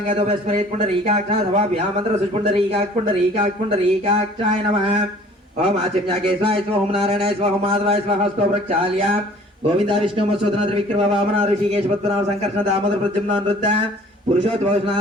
వేశ్వరేత్ పుండరీకాక్షాయ వా వ్యామంత్ర పుండరీకాక్షాయ నమః. ఓం ఆచమ్యాకేశ్వాయ స్వ. ఓం నారాయణాయ స్వ. ఓం మాధవాయ స్వ. హస్తో ప్రక్షాళ్య గోవింద విష్ణు మత్స్యోధన త్రివిక్రమ వామన ఋషికేశ పద్మనాభ సంకర్షణ దామోదర ప్రద్యుమ్న నృత్య పురుషోత్తమ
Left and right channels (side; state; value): both; normal; correlation 0.51